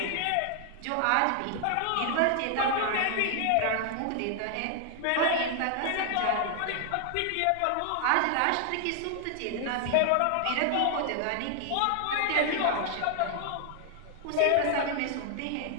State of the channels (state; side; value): different; both; correlation 0.00